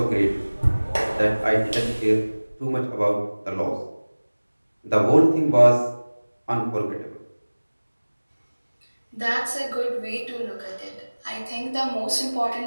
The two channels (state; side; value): inverted; both; correlation -1.00